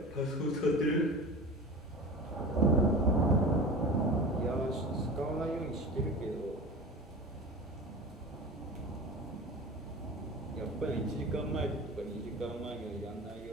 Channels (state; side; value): normal; both; correlation 0.33